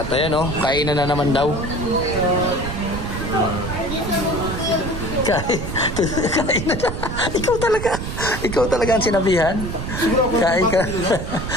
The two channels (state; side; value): noise; right; rumble, 5 dB below the sound